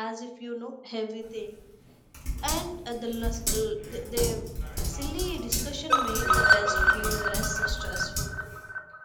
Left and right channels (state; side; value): identical; both; correlation 1.00